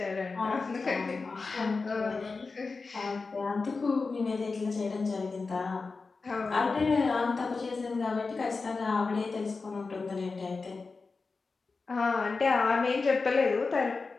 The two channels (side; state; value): right; quieter; 4.2 dB